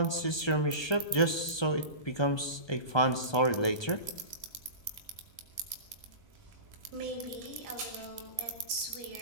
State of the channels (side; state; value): right; late; 1.2 ms